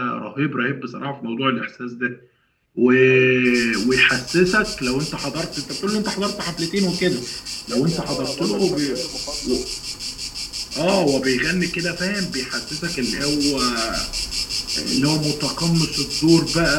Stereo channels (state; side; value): identical; both; correlation 1.00